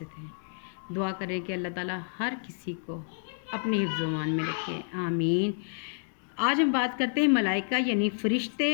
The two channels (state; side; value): silent; right; digital silence